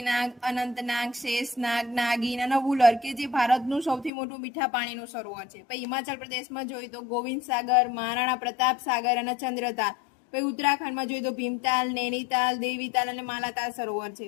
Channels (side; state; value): right; drops out; at 4.1 s